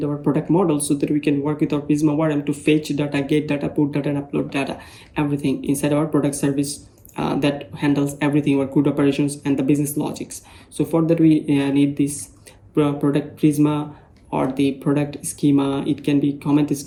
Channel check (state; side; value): identical; both; correlation 1.00